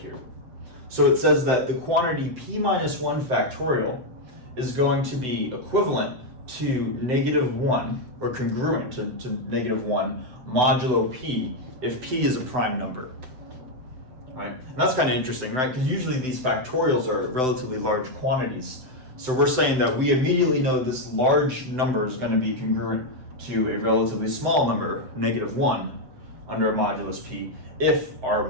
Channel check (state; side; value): late; left; 7.9 ms